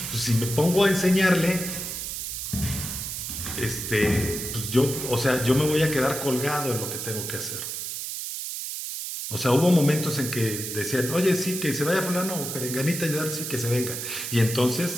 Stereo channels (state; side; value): noise; right; hiss, 5 dB below the sound